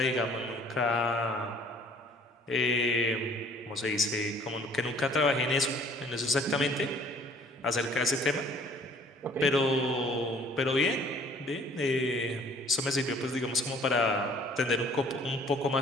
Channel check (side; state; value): both; normal; correlation 0.55